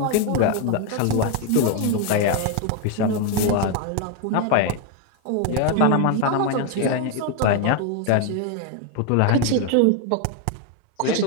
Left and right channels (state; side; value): different; both; correlation 0.01